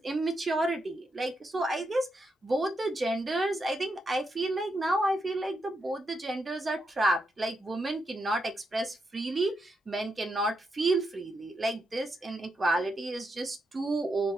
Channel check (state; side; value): normal; both; correlation 0.83